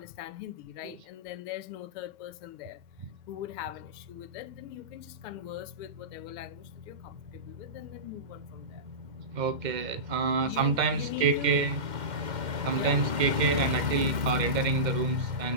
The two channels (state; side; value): late; left; 2.1 ms